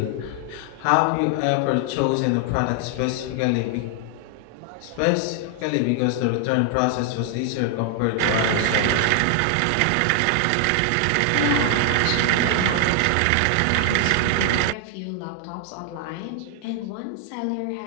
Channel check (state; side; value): different; both; correlation 0.00